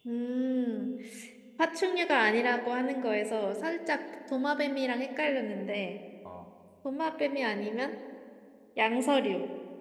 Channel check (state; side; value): identical; both; correlation 1.00